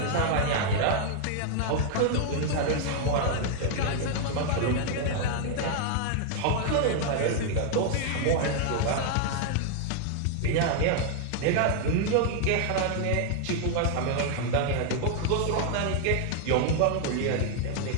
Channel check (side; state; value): both; different; correlation 0.00